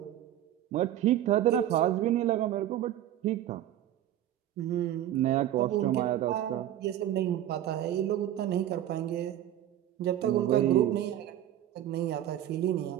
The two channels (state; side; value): quieter; left; 12.1 dB